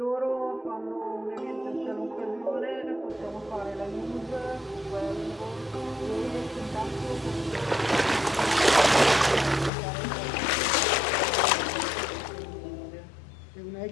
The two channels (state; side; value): drops out; right; at 9.7 s